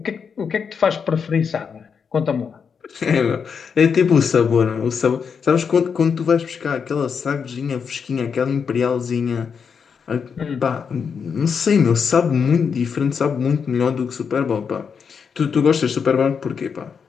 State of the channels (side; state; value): right; quieter; 6.3 dB